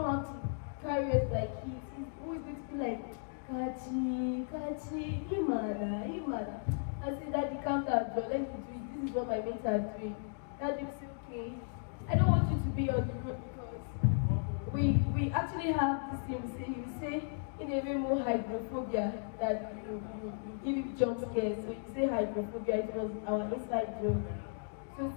have to carry us like kids. It's always going to be like, Kachi, Imada. I said, Daddy, calm down, Joe. Let me do it. This is what my mates are doing. Daddy will say, okay. I don't want you to be on the road because we actually have the same saying. We say, in a way more hydrophobia, that you give him jump scares. So you say hydrophobia, it was our inside joke. So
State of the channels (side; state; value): right; silent; digital silence